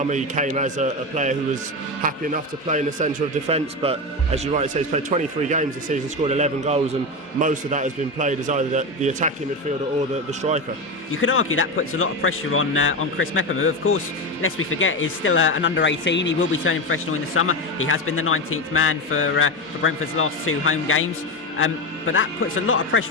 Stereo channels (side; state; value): both; normal; correlation 0.17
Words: he came as a player who was happy enough to play in the centre of defence. But as you rightly say, he's played 23 games this season, scored 11 goals, and most of that has been played as either the attacking midfielder or the striker. You could argue that puts a lot of pressure on Chris Mepham, who, of course, lest we forget, is still an under-18. He will be turning professional in the summer. He has been the 19th man for Brentford's last 2 home games. But that puts a lot of